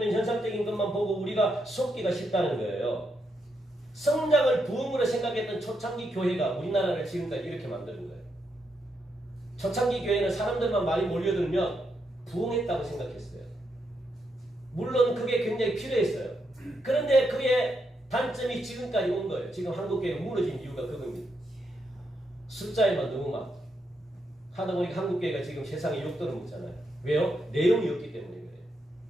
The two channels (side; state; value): both; normal; correlation 0.81